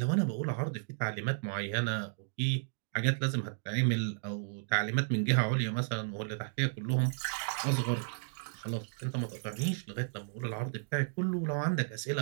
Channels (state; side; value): silent; left; digital silence